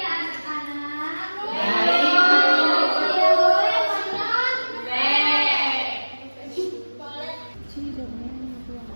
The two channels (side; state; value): both; inverted; correlation -1.00